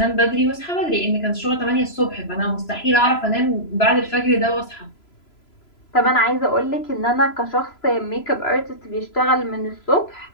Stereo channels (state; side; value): late; right; 3.0 ms